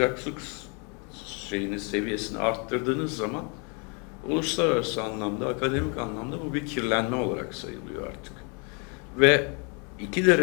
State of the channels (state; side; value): quieter; right; 34.3 dB